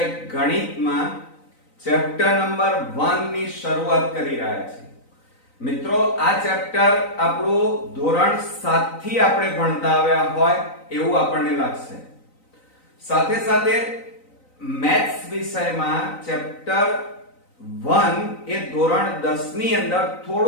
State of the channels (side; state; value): right; late; 3.9 ms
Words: ગણિતમાં ચેપ્ટર નંબર 1 ની શરૂઆત કરી રહ્યા છીએ. મિત્રો, આ ચેપ્ટર આપણું ધોરણ 7 થી આપણે ભણતા આવ્યા હોય એવું આપણને લાગશે. સાથે સાથે મેથ્સ વિષયમાં ચેપ્ટર 1 એ ધોરણ 10 ની અંદર